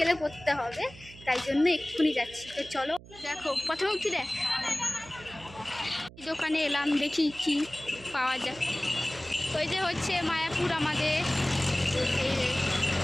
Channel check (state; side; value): noise; right; hum, 19 dB below the sound